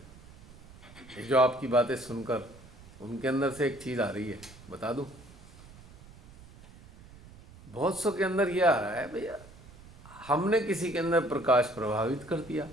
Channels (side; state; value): right; noise; rumble, 21 dB below the sound